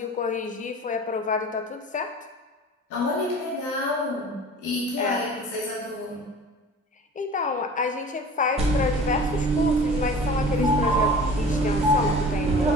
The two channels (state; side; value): normal; both; correlation 0.42